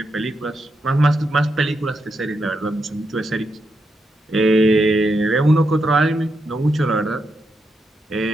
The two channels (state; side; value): normal; both; correlation 0.83